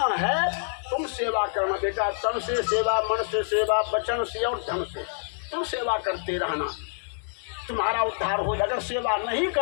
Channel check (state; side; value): silent; right; 60 dB below the other